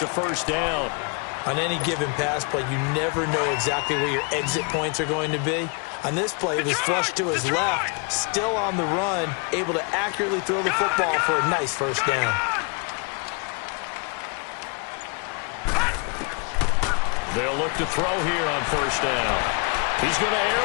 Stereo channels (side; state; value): right; quieter; 35.2 dB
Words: a first down. On any given pass play, you never know exactly where your exit points are going to be. On this play, he was flushed to his left, still on the run, able to accurately throw the football for a nice first down. They'll look to throw here on first down. He's going to air